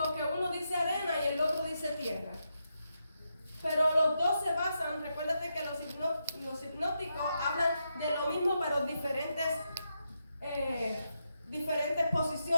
que uno dice arena y el otro dice tierra. Pero los dos se basan, recuérdate que los hipnóticos hablan de lo mismo, pero diferentes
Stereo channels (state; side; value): inverted; both; correlation -0.84